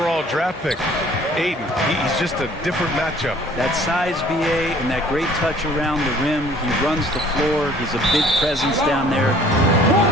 draft pick. Ayton, he's just a different matchup. That size, BA, and that great touch around the rim. He runs the floor. He's a big presence down there.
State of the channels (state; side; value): normal; both; correlation 0.55